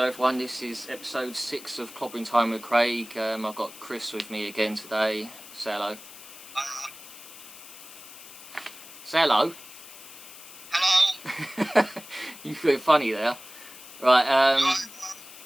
everyone, this is episode 6 of Clobbering Time with Craig. I've got Chris with me again today. Say hello. Say hello. Hello. You feel funny there. Right,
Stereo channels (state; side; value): noise; left; hiss, 16 dB below the sound